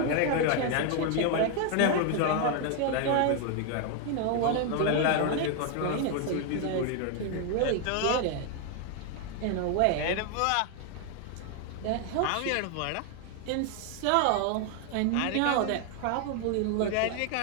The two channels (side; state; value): both; different; correlation 0.00